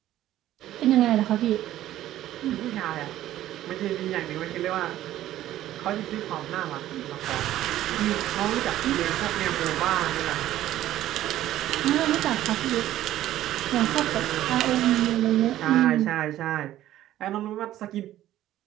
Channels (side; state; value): left; quieter; 13.5 dB